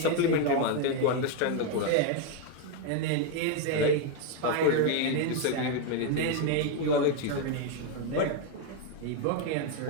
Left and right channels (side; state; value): both; different; correlation 0.01